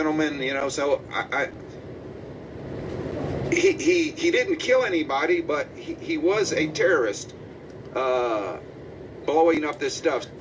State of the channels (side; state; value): both; identical; correlation 1.00